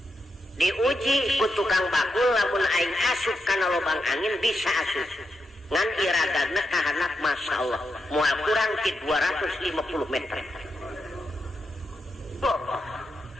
diuji ku tukang bakul lamun aing asup kana lobang angin bisa asup ngan iradana kahanap Masya Allah moal kurang ti 250 meter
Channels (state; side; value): normal; both; correlation 0.85